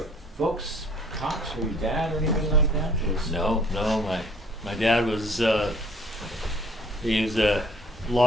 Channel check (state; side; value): normal; both; correlation 0.56